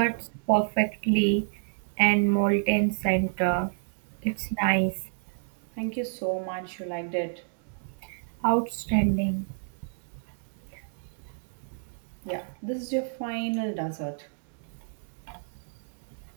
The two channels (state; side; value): silent; left; digital silence